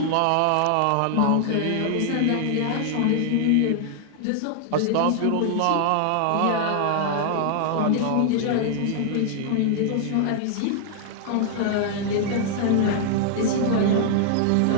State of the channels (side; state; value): both; different; correlation 0.00